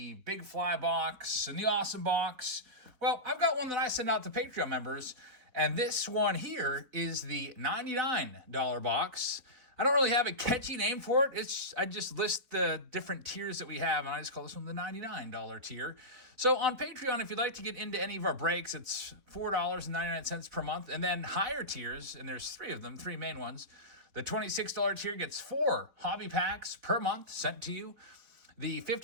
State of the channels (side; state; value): left; late; 4.3 ms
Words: big fly box and the awesome box. Well, I've got one that I send out to Patreon members, and this one here is the $99 box. I don't really have a catchy name for it. I just list the different tiers that we have, and I just call this one the $99 tier. So on Patreon, if you'd like to get into any of our breaks, it's $4.99 per month, and then higher tiers, and there's three of them, three main ones. The $26 tier gets 4 hobby packs per month sent to you. The